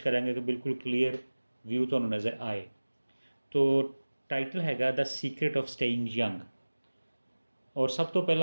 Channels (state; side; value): inverted; both; correlation -1.00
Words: कि बिल्कुल क्लीयर व्यू तुहानूं नज़र आए। तो टाइटल हैगा the secret of staying young. और सब तो